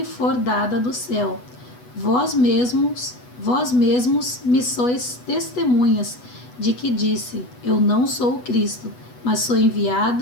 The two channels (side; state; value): right; late; 8.1 ms